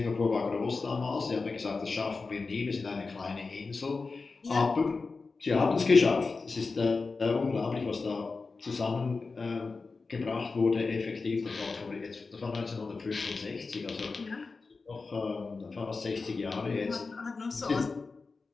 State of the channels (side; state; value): right; quieter; 4.2 dB